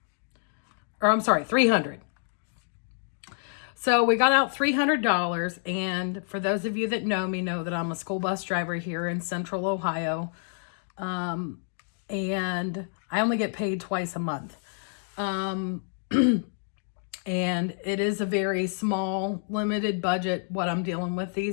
Or I'm sorry, $300. So we got out $300, and for those of you that know me know that I'm a school bus driver here in Central Ohio, and I only get paid twice a month. And it is a very small, limited budget, what I'm dealing with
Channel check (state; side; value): silent; right; digital silence